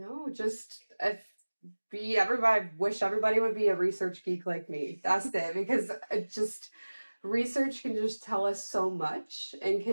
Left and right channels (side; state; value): both; inverted; correlation -1.00